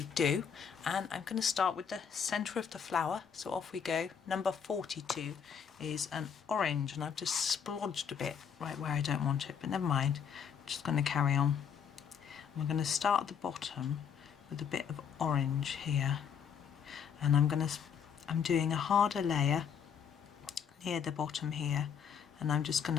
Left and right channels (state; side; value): quieter; right; 7.4 dB